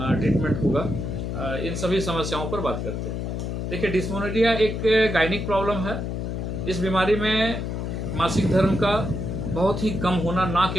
होगा, इन सभी समस्याओं पर बात करते हैं। देखिए, डिस्मेनोरिया एक गायनिक प्रॉब्लम है। इस बीमारी में मासिक धर्म का बहुत ही कम होना, ना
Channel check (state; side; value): noise; left; hum, 3 dB below the sound